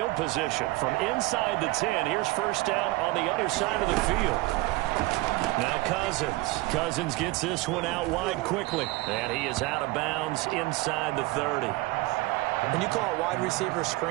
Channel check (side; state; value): left; quieter; 20.6 dB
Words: position? From inside the 10, here's first down on the other side of the field. Now Cousins. Cousins gets this one out wide quickly. And he is out of bounds inside the 30. When you call a wide receiver